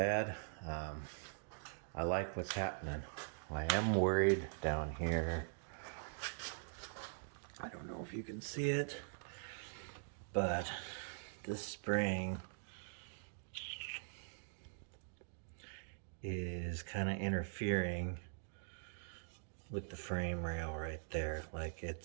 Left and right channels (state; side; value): silent; left; digital silence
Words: I like what's happening. I am worried down here. I don't know if you can see it, but this spring is kind of interfering with the frame rail right there. Like,